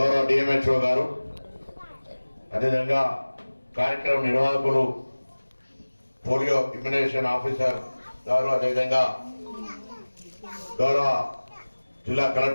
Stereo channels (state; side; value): inverted; both; correlation -1.00